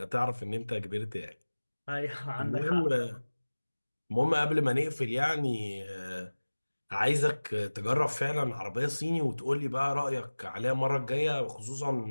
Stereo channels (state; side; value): inverted; both; correlation -1.00